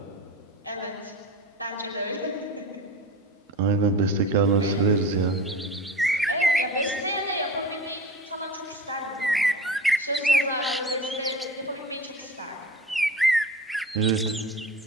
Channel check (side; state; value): both; normal; correlation 0.33